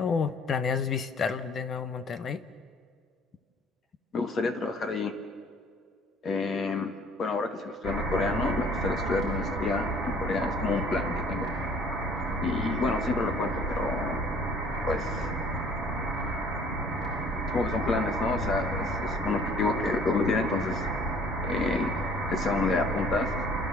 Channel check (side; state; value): both; normal; correlation 0.55